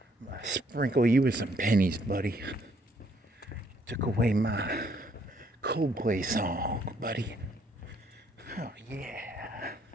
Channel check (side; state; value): both; normal; correlation 0.68